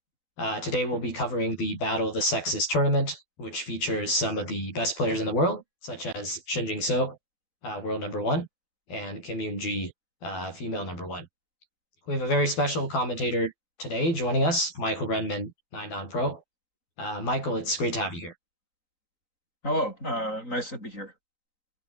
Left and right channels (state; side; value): late; right; 12 ms